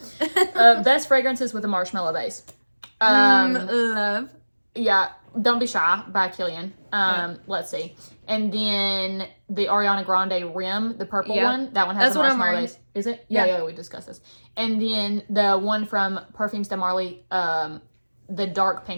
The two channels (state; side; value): inverted; both; correlation -1.00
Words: Best fragrances with a marshmallow base. Love. Yeah, Don't Be Shy by Killian. Let's see. And then the Ariana Grande Rim, the purple one. That one has That's a what I'm marshmallow wearing. base. Is it? Yeah, we discussed this. And then the one from Perfumes de Marly, the dark